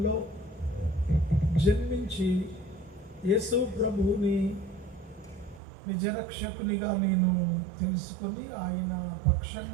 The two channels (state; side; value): drops out; left; at 5.6 s